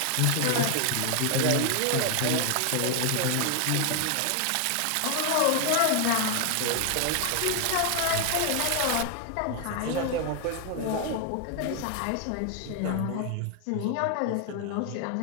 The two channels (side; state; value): both; different; correlation 0.00